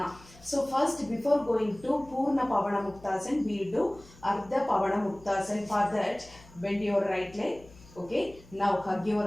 So first, before going to Purna Pavana Muktasana, we will do Ardha Pavana Muktasana. For that, bend your right leg. Okay, now hug your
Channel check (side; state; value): left; noise; hum, 23 dB below the sound